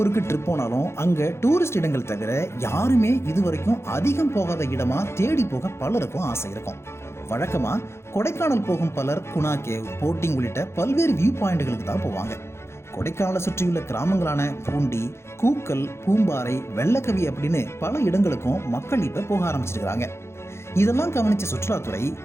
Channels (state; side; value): late; right; 0.13 ms